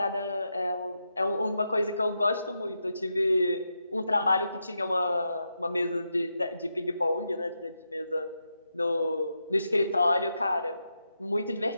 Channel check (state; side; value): inverted; both; correlation -0.85